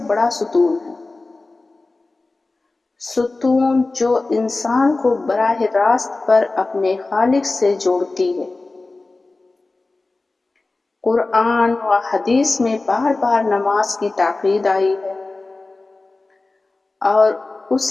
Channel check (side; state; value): right; quieter; 3.3 dB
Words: بڑا ستون ہے، ستون جو انسان کو براہ راست پر اپنے خالق سے جوڑتی ہے۔ قرآن و حدیث میں بار بار نماز کی تاکید آئی ہے اور